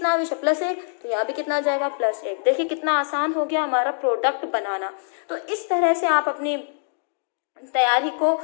आवेश है? +1, तो यहाँ भी कितना आ जाएगा? +1। देखिए कितना आसान हो गया हमारा प्रोडक्ट बनाना। तो इस तरह से आप अपनी तैयारी को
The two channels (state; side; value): silent; right; digital silence